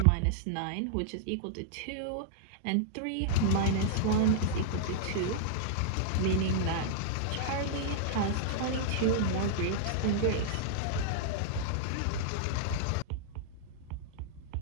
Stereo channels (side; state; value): both; different; correlation -0.01